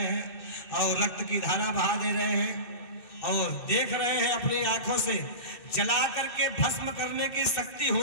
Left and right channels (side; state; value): right; late; 2.6 ms